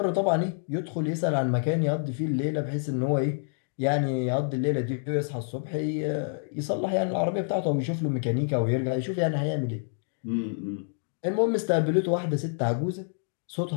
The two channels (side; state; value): right; silent; digital silence